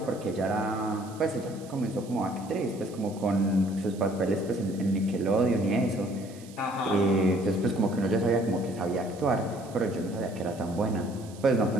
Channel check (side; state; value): right; noise; hiss, 22 dB below the sound